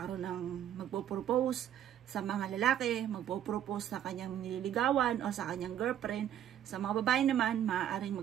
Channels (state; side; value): quieter; left; 10.6 dB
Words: ng magpo-propose sa mga lalaki, magpo-propose sa kanyang nililigawan o sa kanyang girlfriend. Sa mga babae naman, maaaring